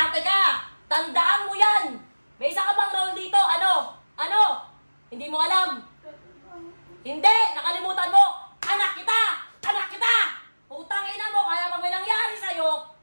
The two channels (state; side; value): inverted; both; correlation -1.00